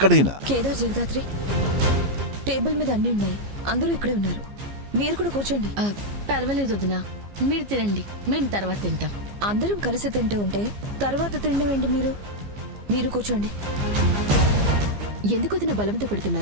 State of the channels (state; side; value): late; left; 15 ms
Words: కేదార్, జగదాత్రి, టేబుల్ మీద అన్ని ఉన్నాయి. అందరూ ఇక్కడే ఉన్నారు. మీరు కూడా కూర్చోండి. పర్వాలేదు వదినా, మీరు తినండి, మేము తర్వాత తింటాం. అందరం కలిసి తింటూ ఉంటే తర్వాత తినడం ఏంటి? మీరు కూర్చోండి. ఎందుకు వదిన బలవంత